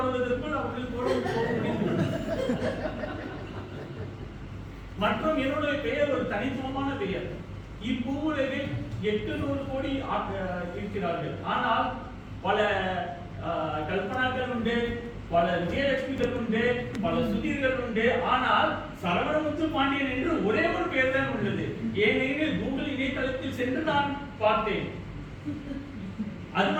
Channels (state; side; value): identical; both; correlation 1.00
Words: அவர்கள் கோபம். மற்றும் என்னுடைய பெயர் ஒரு தனித்துவமான பெயர். இப்பூவுலகில் 800 கோடி இருக்கிறார்கள். ஆனால் பல கல்பனாக்கள் உண்டு, பல விஜயலட்சுமிகள் உண்டு, பல சுதீர்கள் உண்டு. ஆனால் சரவணமுத்து பாண்டியன் என்று ஒரே ஒரு பெயர் தான் உள்ளது. ஏனெனில் கூகுள் இணையதளத்தில் சென்று நான் பார்த்தேன். அது